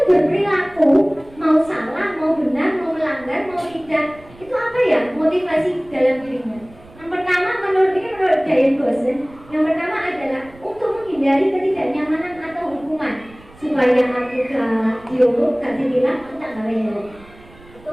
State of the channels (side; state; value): right; noise; rumble, 24 dB below the sound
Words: berperilaku, mau salah, mau benar, mau melanggar, mau tidak. Itu apa ya motivasi dalam dirinya? Yang pertama menurut Diane Goshen, yang pertama adalah untuk menghindari ketidaknyamanan atau hukuman. Supaya aku gak dihukum, gak dibilang, aku tak gawe helm.